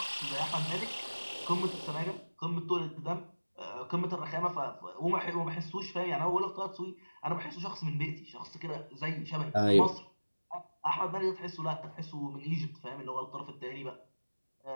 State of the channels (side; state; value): both; inverted; correlation -1.00